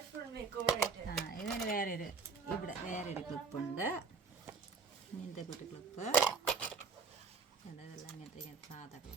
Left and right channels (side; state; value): left; quieter; 5.1 dB